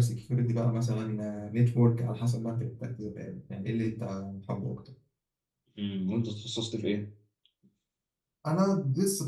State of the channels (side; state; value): both; identical; correlation 1.00